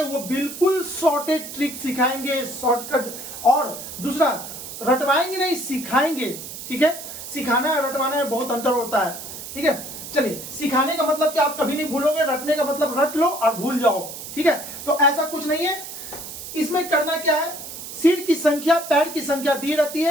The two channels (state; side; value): noise; right; hiss, 10 dB below the sound